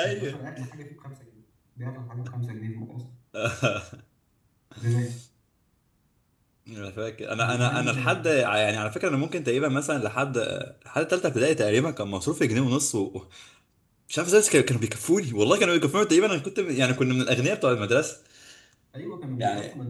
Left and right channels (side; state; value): both; identical; correlation 1.00